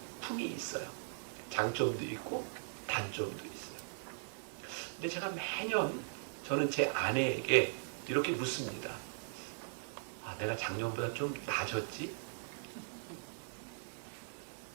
있어요. 장점도 있고 단점도 있어요. 근데 제가 매년 저는 제 아내에게 이렇게 묻습니다. 아, 내가 작년보다 좀 나아졌지?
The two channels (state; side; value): silent; left; digital silence